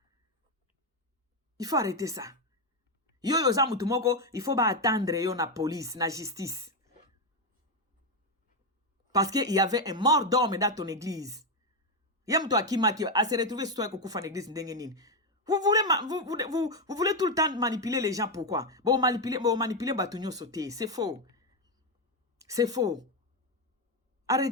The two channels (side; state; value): both; normal; correlation 0.06